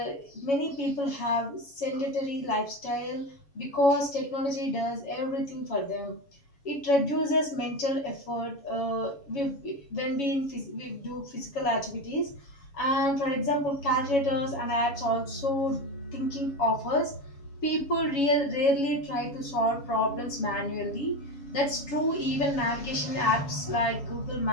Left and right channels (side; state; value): right; late; 7.2 ms